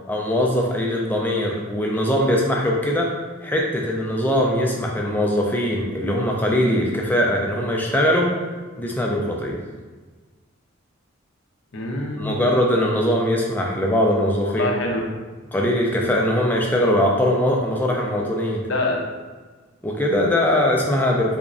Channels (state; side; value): normal; both; correlation 0.42